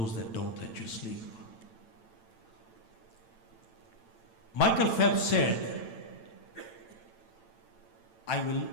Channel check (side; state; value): right; late; 8.9 ms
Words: that don't let you sleep. Michael Phelps said, I will